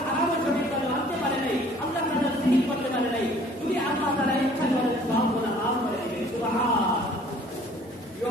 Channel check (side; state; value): both; normal; correlation 0.54